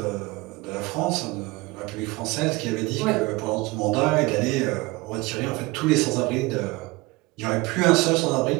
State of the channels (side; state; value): left; quieter; 22.9 dB